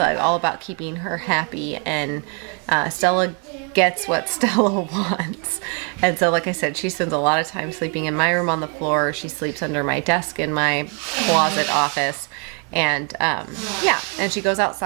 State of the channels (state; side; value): quieter; left; 37.8 dB